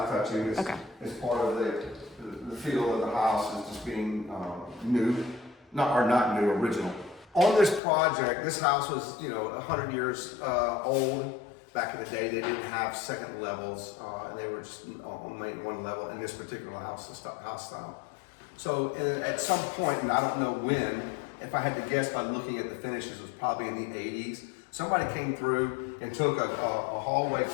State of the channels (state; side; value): drops out; right; at 7.8 s